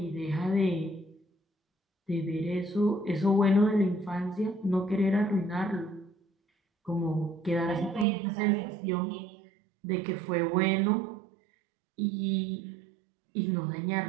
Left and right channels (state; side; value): drops out; left; at 8.1 s